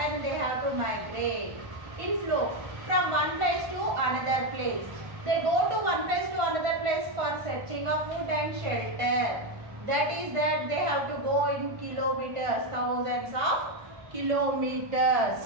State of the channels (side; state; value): left; late; 1.5 ms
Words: They have to migrate in flow from one place to another place. They go to one place to another place for searching of food and shelter. That is that they have to go in kilometers, thousands of